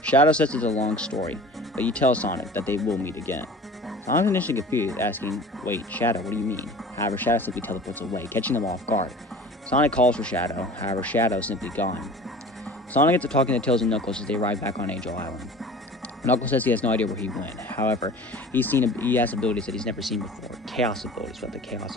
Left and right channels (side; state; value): both; normal; correlation 0.41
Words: Shadow says it's a long story, but you tell Sonic that they will meet again. Sonic's initially confused, asking, wait, Shadow, what do you mean? However, Shadow simply teleports away, catching them off guard. Sonic calls for Shadow, however, Shadow is simply gone. Sonic gets to talking to Tails and Knuckles as they arrive back on Angel Island. Knuckles says he has no idea where he went. However, he has abilities that he's never seen before. Chaos abilities with the Chaos